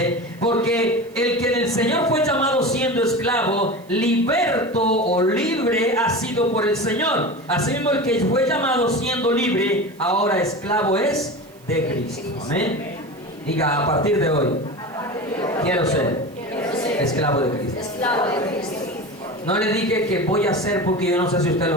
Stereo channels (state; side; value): noise; right; hiss, 29 dB below the sound